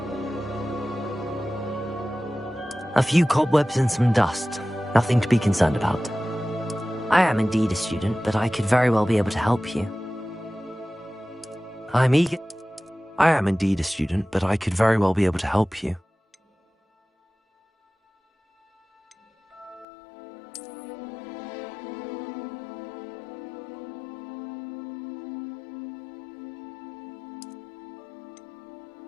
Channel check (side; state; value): right; drops out; at 19.9 s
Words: A few cobwebs and some dust. Nothing to be concerned about. I am indeed a student, but I could very well be able to help you. I am indeed a student, but I could very well be able to help you.